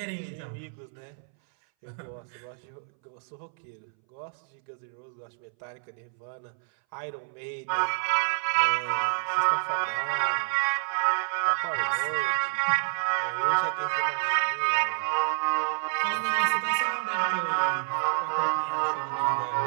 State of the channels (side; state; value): left; silent; 59 dB below the other